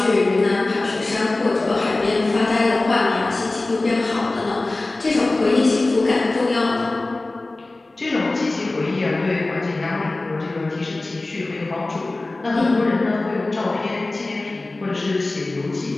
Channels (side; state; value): right; quieter; 3.0 dB